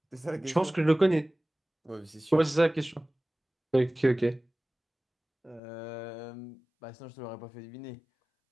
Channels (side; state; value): right; drops out; at 5.6 s